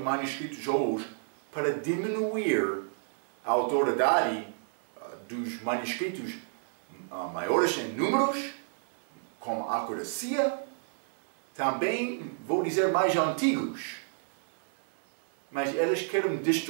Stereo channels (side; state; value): left; silent; 57 dB below the other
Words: hoje, para diminuir a autoridade dos manuscritos maiores em números, com acuracia, também, vou dizer, mais antigos. Mas eles querem